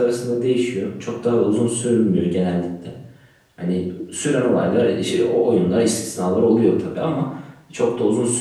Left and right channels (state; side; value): identical; both; correlation 1.00